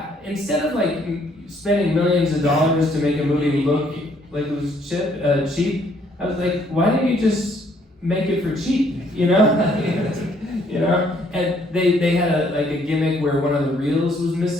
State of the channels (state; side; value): normal; both; correlation 0.66